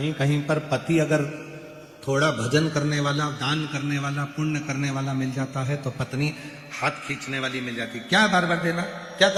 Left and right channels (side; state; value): both; identical; correlation 1.00